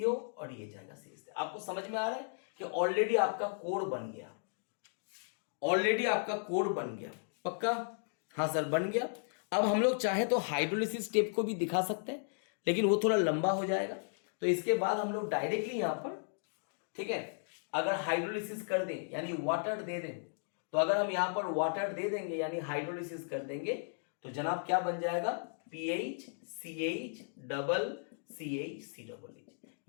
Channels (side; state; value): right; silent; digital silence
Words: और ये जाएगा CH। आपको समझ में आ रहा है कि ऑलरेडी आपका कोड बन गया, ऑलरेडी आपका कोड बन गया, पक्का, हाँ सर बन गया। अब हम लोग चाहे तो हाइड्रोलिसिस स्टेप को भी दिखा सकते हैं, लेकिन वो थोड़ा लंबा हो जाएगा, तो इसके बाद हम लोग डायरेक्टली यहां पर, ठीक है, अगर हाइड्रोलिसिस कर दें यानी वाटर दे दें, तो अगर हम यहां पर वाटर दे देंगे यानी हाइड्रोलिसिस कर देंगे तो जनाब क्या बन जाएगा, PH CH double CH COOH।